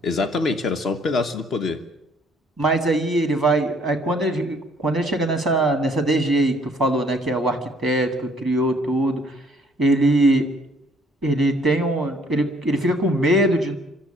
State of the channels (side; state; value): both; normal; correlation 0.62